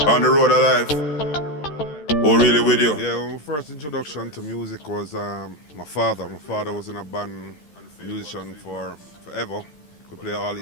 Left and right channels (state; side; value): late; right; 13 ms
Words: On the road alive. Oh, really with you? Yeah, well, my first introduction to music was my father. My father was in a band, a musician for forever. Could play all